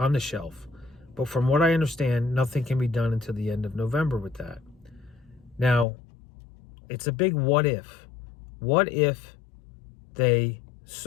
the shelf. But from what I understand, nothing can be done until the end of November with that. Now, it's a big what if. What if they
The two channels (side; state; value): right; drops out; at 5.9 s